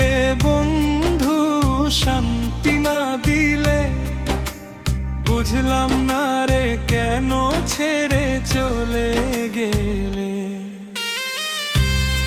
বন্ধু শান্তি না দিলে, বুঝলাম না রে কেন ছেড়ে চলে গেলে।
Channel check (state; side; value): identical; both; correlation 1.00